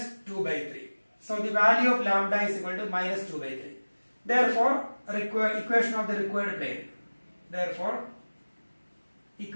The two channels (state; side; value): inverted; both; correlation -1.00